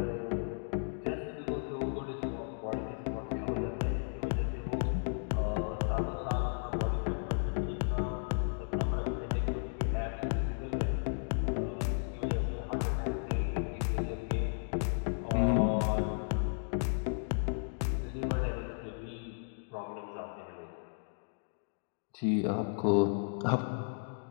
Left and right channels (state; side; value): silent; right; digital silence